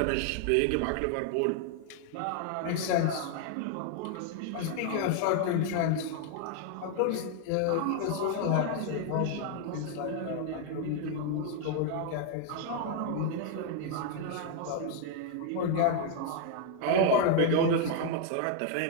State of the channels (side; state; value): both; different; correlation 0.00